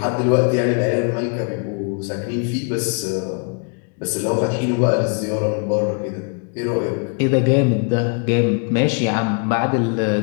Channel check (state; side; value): quieter; right; 39.4 dB